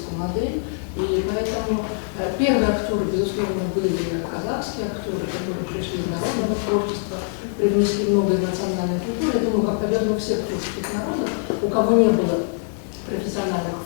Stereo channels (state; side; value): silent; right; 63 dB below the other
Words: модель. И поэтому первые актеры, безусловно, были казахские актеры, которые пришли из народного творчества, привнесли много из национальной культуры. Я думаю, как, наверное, у всех творческих народов, у кого не было профессиональных